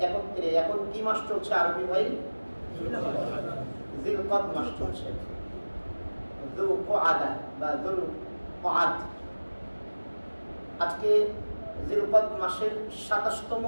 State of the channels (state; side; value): inverted; both; correlation -1.00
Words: একত্রে এখন কি মাস চলছে আরবি ভাই? জিলকদ মাস চলছে। যুলকআদা বা যুলকআদ, আজকে জিলকদ মাসের 27তম